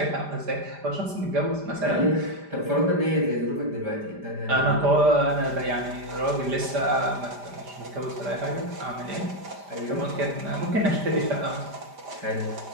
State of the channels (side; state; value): left; late; 5.0 ms